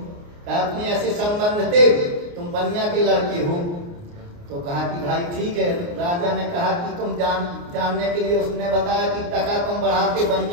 कहा अपने ऐसे संबंध थे, तुम बनिया के लड़के हो। तो कहा कि भाई ठीक है। राजा ने कहा कि तुम जानने के लिए, उसने बताया कि टका तुम बढ़ाते,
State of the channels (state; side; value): late; left; 29 ms